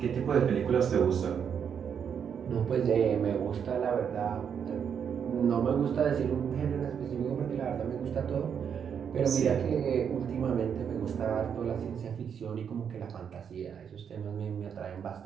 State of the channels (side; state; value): left; quieter; 7.6 dB